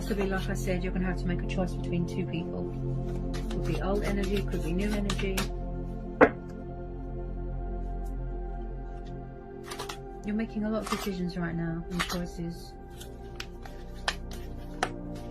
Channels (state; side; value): identical; both; correlation 1.00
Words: like I said, you're going to have to make a choice between two people. Could be old energy, could be new energy. You're making a lot of decisions right now and choices.